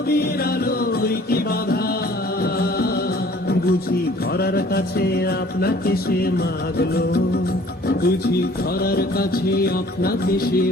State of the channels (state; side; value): normal; both; correlation 0.53